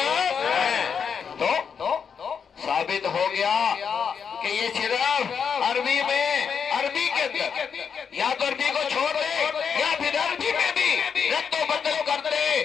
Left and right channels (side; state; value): right; quieter; 6.7 dB